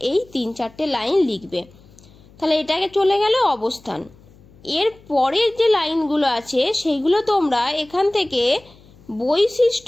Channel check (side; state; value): left; noise; hum, 26 dB below the sound